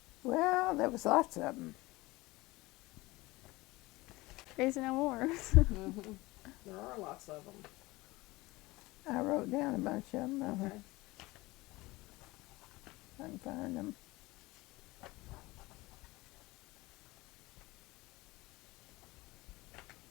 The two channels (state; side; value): quieter; right; 21.0 dB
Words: Well, there was lots of them. There's no more. There are lots of them. I wrote down a bunch of them. Okay. I can find them.